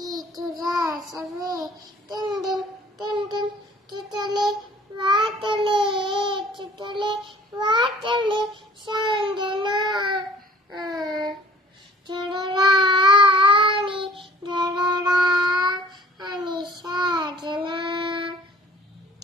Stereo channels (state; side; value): normal; both; correlation 0.51